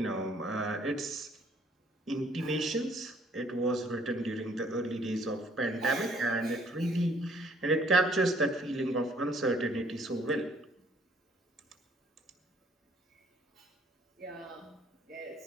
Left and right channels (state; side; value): normal; both; correlation 0.62